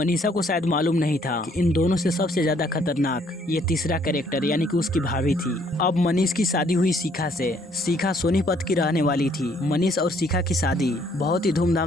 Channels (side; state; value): both; normal; correlation 0.65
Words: को शायद मालूम नहीं था कि इन दोनों से सबसे ज्यादा खतरनाक ये तीसरा कैरेक्टर यानी कि उसकी भाभी थी। अब मनीष की शादी हुई शिखा से। शिखा सोनीपत की रहने वाली थी। मनीष और शिखा की शादी बहुत ही